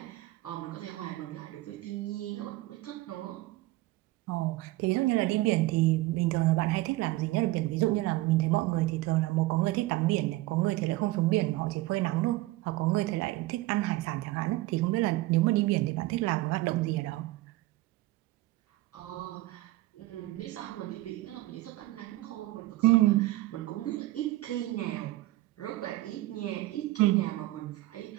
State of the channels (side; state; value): left; quieter; 18.4 dB